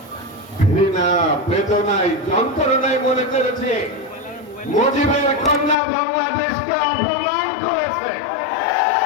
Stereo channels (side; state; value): right; drops out; at 5.8 s